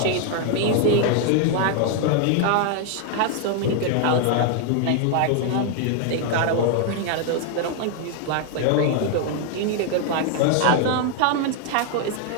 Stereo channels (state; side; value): different; both; correlation 0.00